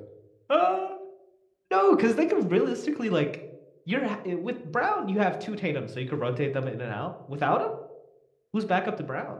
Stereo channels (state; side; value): identical; both; correlation 1.00